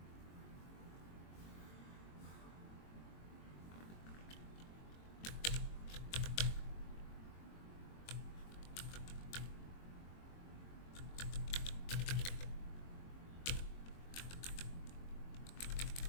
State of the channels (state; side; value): late; right; 22 ms